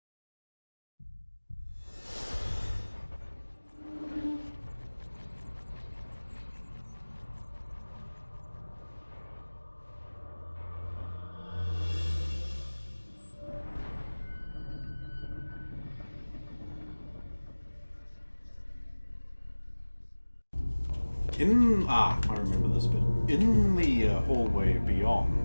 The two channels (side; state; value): both; inverted; correlation -1.00